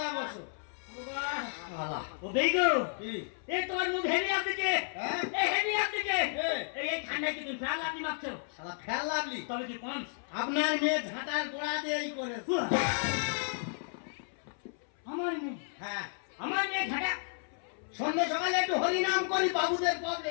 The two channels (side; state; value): right; silent; 56 dB below the other